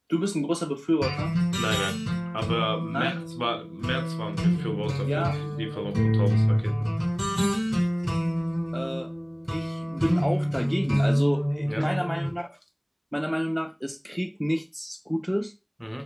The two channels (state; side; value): identical; both; correlation 1.00